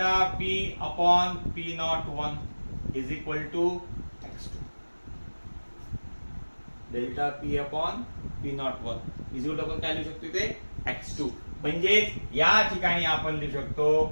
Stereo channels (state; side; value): inverted; both; correlation -1.00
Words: P upon P01 is equal to x2. Delta P upon P01 is equal to, आपण काय लिहू शकतो इथे, x2. म्हणजे या ठिकाणी आपण लिहू